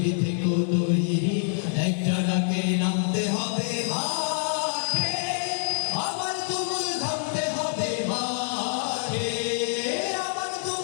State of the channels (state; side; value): silent; right; 61 dB below the other